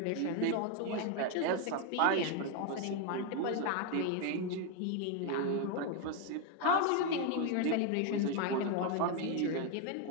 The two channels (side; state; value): both; different; correlation 0.01